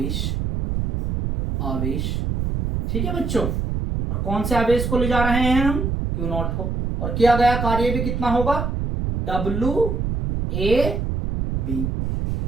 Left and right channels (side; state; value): right; noise; rumble, 1 dB below the sound